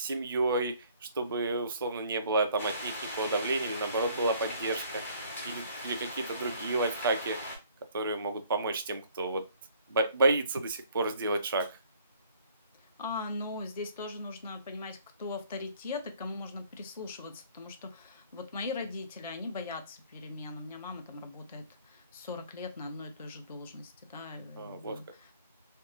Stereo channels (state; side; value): inverted; both; correlation -0.59